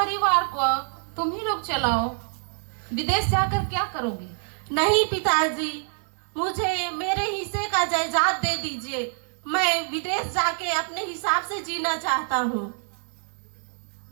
को तुम ही लोग चलाओ। विदेश जाकर क्या करोगे? नहीं पिताजी, मुझे मेरे हिस्से का जायदाद दे दीजिए। मैं विदेश जाके अपने हिसाब से जीना चाहता हूँ।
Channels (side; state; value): left; silent; 61 dB below the other